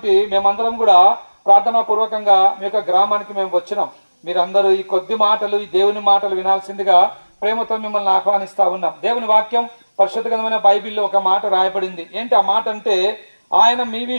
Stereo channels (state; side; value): inverted; both; correlation -1.00